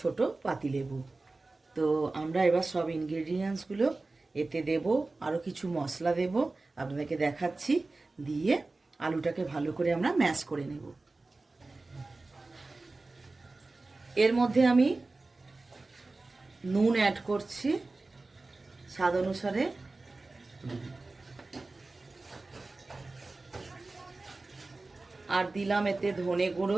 পাতিলেবু। তো আমরা এবার সব ইনগ্রেডিয়েন্টসগুলো এতে দেব, আরও কিছু মশলা দেব, আপনাদেরকে দেখাচ্ছি। দিয়ে আলুটাকে ভালো করে আমরা ম্যাশ করে নেব। এর মধ্যে আমি নুন অ্যাড করছি স্বাদ অনুসারে, আর দিলাম এতে ধনে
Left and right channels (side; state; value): left; quieter; 3.4 dB